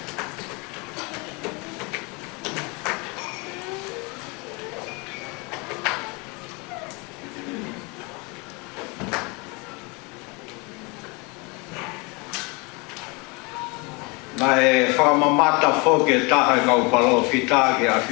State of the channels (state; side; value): quieter; right; 28.8 dB